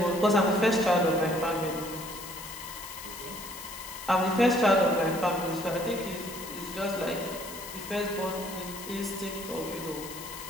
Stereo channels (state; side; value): noise; left; hiss, 12 dB below the sound